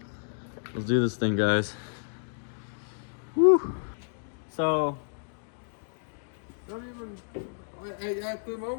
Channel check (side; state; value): right; silent; digital silence